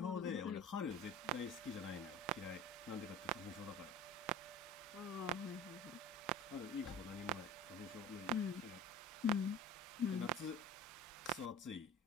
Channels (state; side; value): normal; both; correlation 0.40